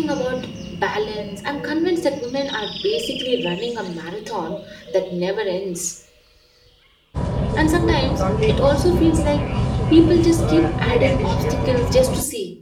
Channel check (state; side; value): identical; both; correlation 1.00